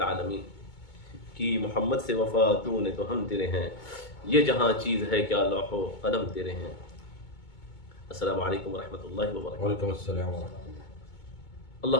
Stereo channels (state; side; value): late; right; 2.2 ms